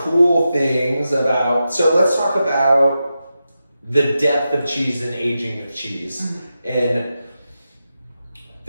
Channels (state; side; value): inverted; both; correlation -0.90